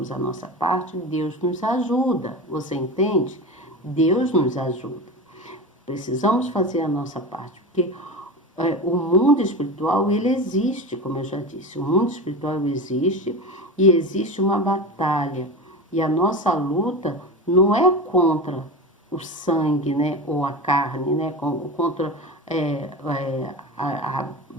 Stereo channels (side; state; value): both; normal; correlation 0.26